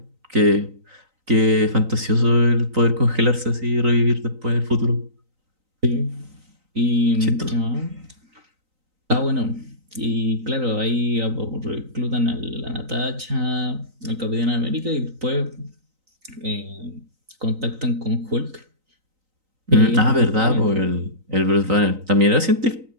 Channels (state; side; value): late; left; 3.9 ms